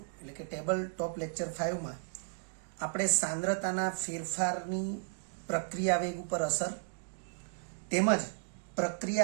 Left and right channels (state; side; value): silent; left; digital silence